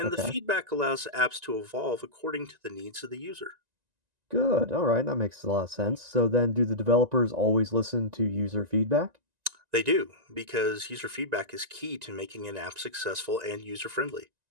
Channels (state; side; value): late; left; 1.9 ms